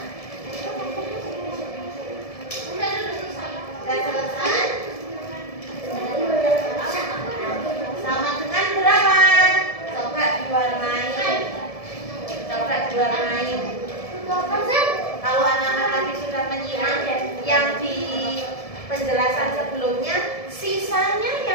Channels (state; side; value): late; right; 1.7 ms